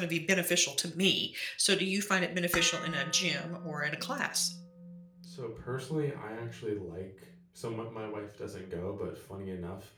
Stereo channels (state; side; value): identical; both; correlation 1.00